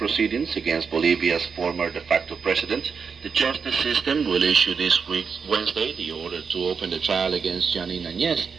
against Bolivia's former de facto president, the justice system will issue this week, Wednesday, the order to open the trial against Janine Añez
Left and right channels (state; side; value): quieter; left; 5.8 dB